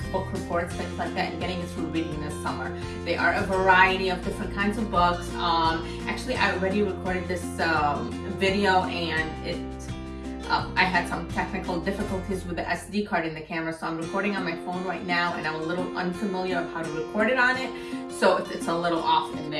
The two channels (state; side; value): identical; both; correlation 1.00